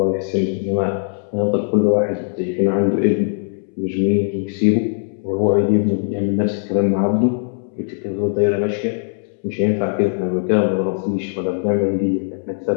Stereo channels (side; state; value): right; silent; 66 dB below the other